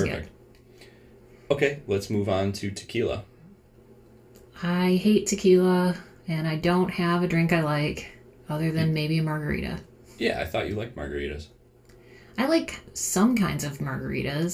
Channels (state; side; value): identical; both; correlation 1.00